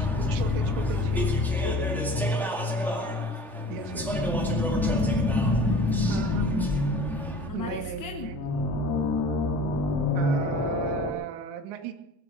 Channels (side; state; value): both; normal; correlation 0.43